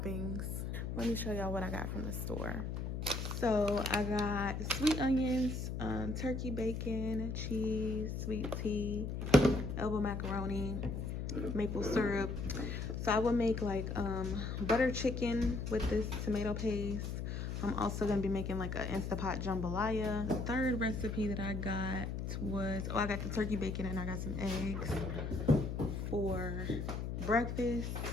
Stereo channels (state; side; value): noise; left; hum, 3 dB below the sound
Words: Let me show y'all what I got from the store. So I got sweet onions, turkey bacon, cheese, sweet tea, elbow macaroni, maple syrup. So I will make like butter chicken with this tomato paste. I'm also gonna be making like an Instapot jambalaya. The third recipe that I got was, I got the turkey bacon and I got some eggs for breakfast